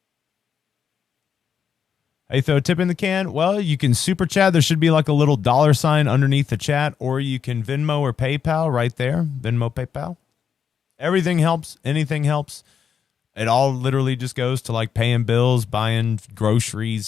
Hey, throw a tip in the can? Well, you can super chat. There should be like a little $ underneath the chat, or you can Venmo or PayPal right there. Venmo, PayPal. Everything helps. Anything helps. It all literally just goes to like paying bills, buying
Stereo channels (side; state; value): right; quieter; 7.3 dB